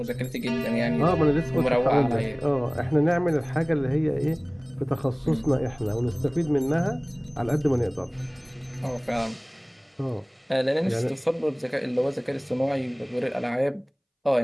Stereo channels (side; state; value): both; identical; correlation 1.00